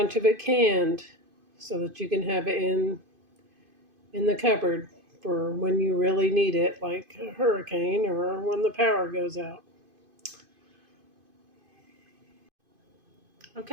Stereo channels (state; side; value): late; left; 2.5 ms